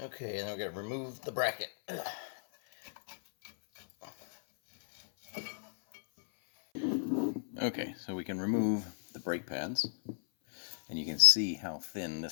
Okay, and then we're going to remove the bracket. Okay, so we can remove the brake pads, and you can see how thin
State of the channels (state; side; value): silent; right; 55 dB below the other